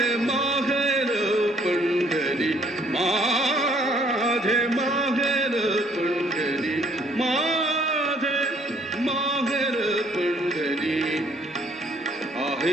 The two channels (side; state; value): both; normal; correlation 0.63